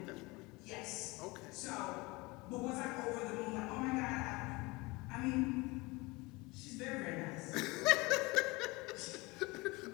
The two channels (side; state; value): right; quieter; 24.0 dB